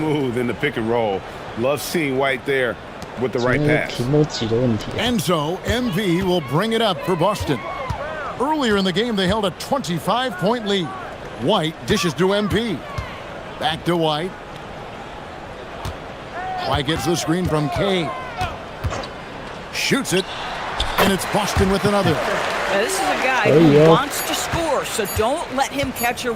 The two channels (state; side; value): identical; both; correlation 1.00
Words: in the pick and roll. Love seeing White there with the right pass. And so MV will bring it up for Boston. Earlier in the game, they held a 25-point lead. White dishes to MP. Back to White. White gets the screen from K. Shoots it. And it's Boston with another. Now, this is a guy who wants to score, so don't let him catch a